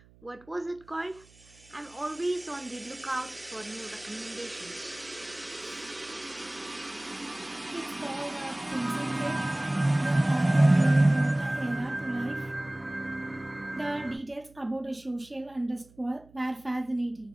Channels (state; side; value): noise; right; hum, 26 dB below the sound